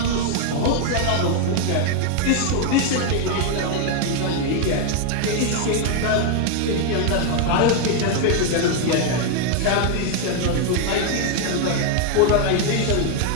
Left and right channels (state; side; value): different; both; correlation 0.01